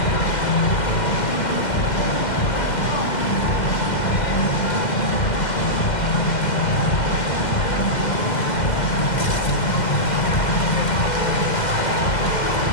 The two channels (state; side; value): late; right; 2.1 ms